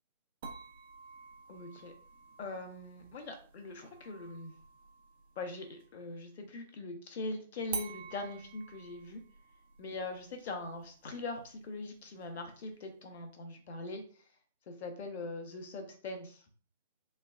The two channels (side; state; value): both; inverted; correlation -0.35